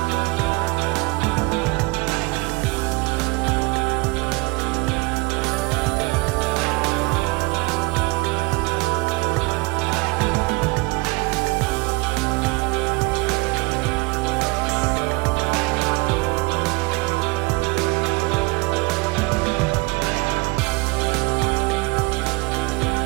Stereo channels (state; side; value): quieter; left; 25.5 dB